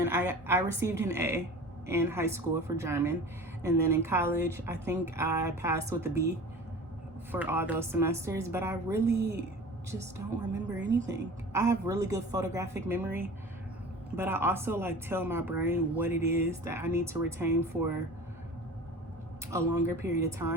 I received an A in high school for German. And then in college, I think I passed with a B for all those semesters, but I really just don't remember anything. I have really good photographic memory, but I also like tell my brain what it is that I need to retain for a longer period of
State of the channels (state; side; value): normal; both; correlation 0.38